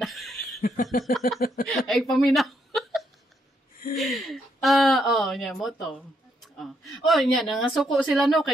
Ay, paminaw. Niya, moto. Niya, nangasuko sila no,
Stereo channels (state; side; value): normal; both; correlation 0.76